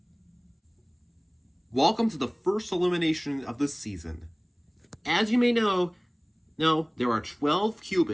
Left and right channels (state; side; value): identical; both; correlation 1.00